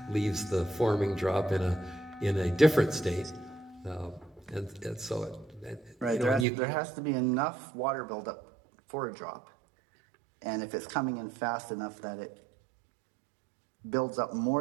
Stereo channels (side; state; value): left; drops out; at 6.5 s